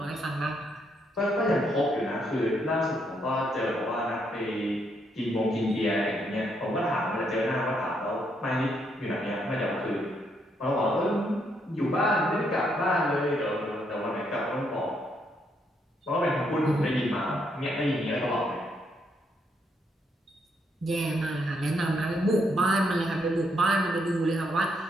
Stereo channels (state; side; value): normal; both; correlation 0.75